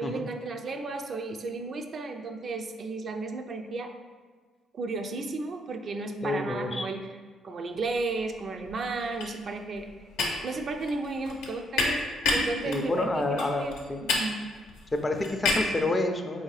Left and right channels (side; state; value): both; normal; correlation 0.71